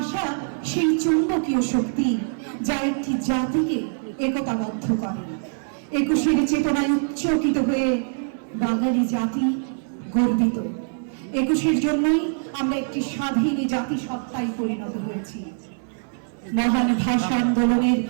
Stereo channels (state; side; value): silent; left; 59 dB below the other